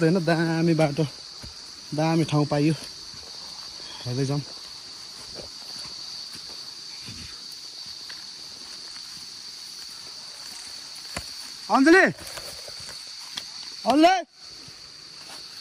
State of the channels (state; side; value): identical; both; correlation 1.00